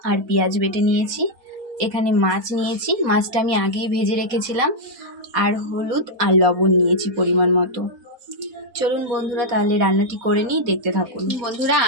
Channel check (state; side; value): late; left; 4.1 ms